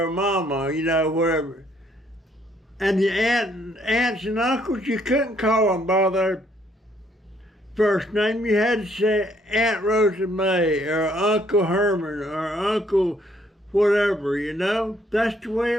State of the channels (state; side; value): normal; both; correlation 0.67